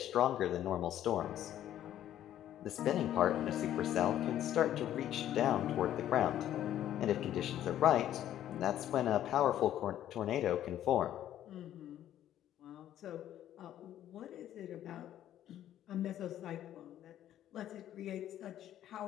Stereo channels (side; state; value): right; quieter; 11.8 dB